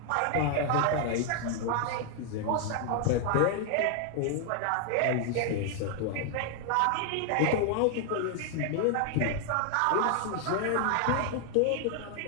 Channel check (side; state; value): both; different; correlation 0.00